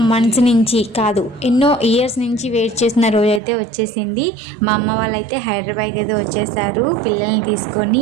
మంత్స్ నుంచి కాదు ఎన్నో ఇయర్స్ నుంచి వెయిట్ చేసిన రోజు అయితే వచ్చేసింది. మా అమ్మ వాళ్ళైతే హైదరాబాద్ అయితే వచ్చేసారు పిల్లల్ని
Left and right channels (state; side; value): drops out; left; at 3.4 s